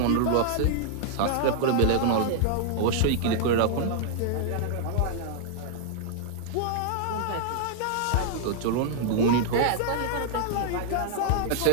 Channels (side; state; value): both; different; correlation -0.01